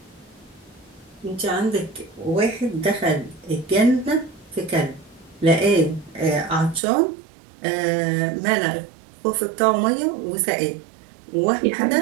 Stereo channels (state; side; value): drops out; left; at 6.8 s